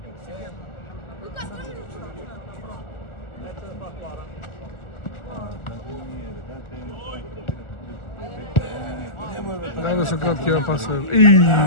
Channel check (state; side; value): late; right; 1.4 ms